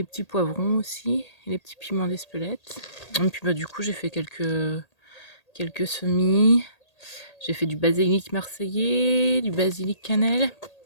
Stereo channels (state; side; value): late; right; 1.8 ms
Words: petits poivrons aussi, et les petits piments d'Espelette. Et puis bah du coup j'ai fait quelques semis. J'ai fait du basilic marseillais, du basilic cannelle,